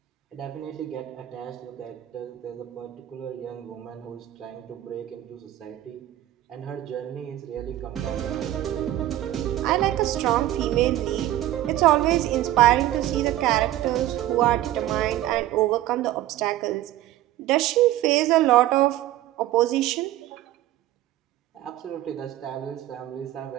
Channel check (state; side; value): quieter; left; 14.2 dB